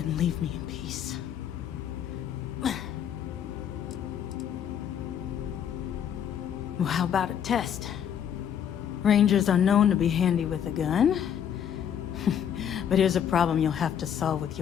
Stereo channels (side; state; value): right; quieter; 9.0 dB